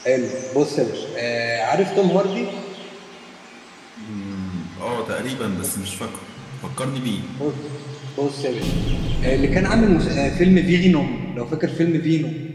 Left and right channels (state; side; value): identical; both; correlation 1.00